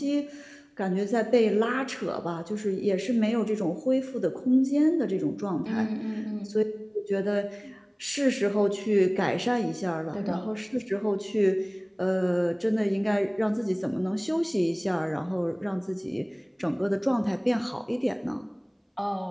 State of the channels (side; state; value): both; identical; correlation 1.00